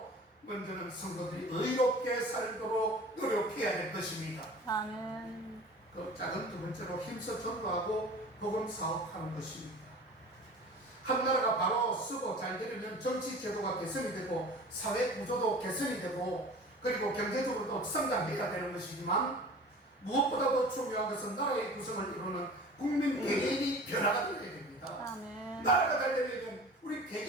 먼저는 성도들이 의롭게 살도록 노력해야 될 것입니다. 아멘. 그 작은 두 번째로 힘써 전도하고 복음 사업하는 것입니다. 한 나라가 바로 쓰고 잘 되려면 정치 제도가 개선이 되고 사회 구조도 개선이 되고 그리고 경제적으로도 성장해야 되는 것이지만 무엇보다도 중요한 것은 나라의 구성을 이루는 국민 개개인이 변화가 되어야 됩니다. 아멘. 나라가 잘 되려면 우리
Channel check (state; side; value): normal; both; correlation 0.41